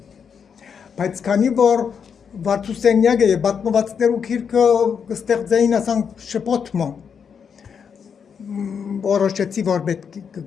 բայց քանի որ Վարդուսենյակը եւ պատմվածքներու քիրքը կստեղծեին ասանք շփոթմը որոշեցի որ պետք է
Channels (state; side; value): quieter; right; 6.8 dB